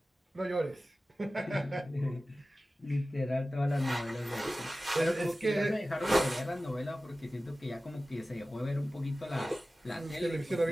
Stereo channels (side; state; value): both; normal; correlation 0.96